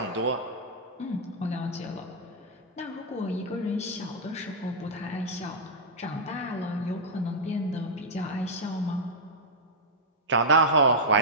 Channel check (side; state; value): both; normal; correlation -0.08